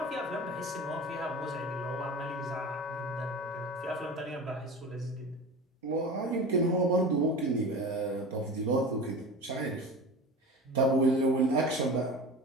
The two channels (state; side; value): normal; both; correlation 0.33